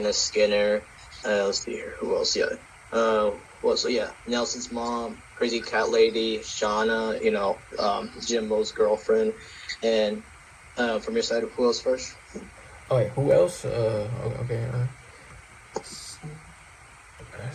Skinner, let's see here, who else? Nelson's mom, Crazy Cat Lady, Shauna, Jimbo's girlfriend, and from your side, who else first? Oh wait, who else? Okay.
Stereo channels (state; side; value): identical; both; correlation 1.00